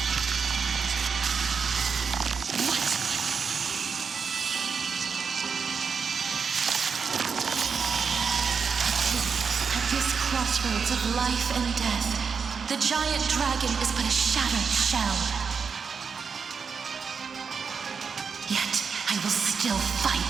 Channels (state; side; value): quieter; left; 5.8 dB